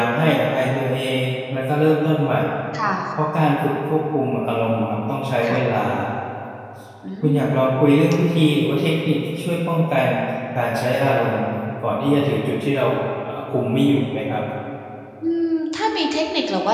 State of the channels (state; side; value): identical; both; correlation 1.00